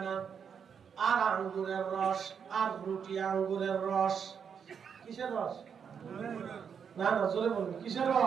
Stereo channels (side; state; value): left; quieter; 7.1 dB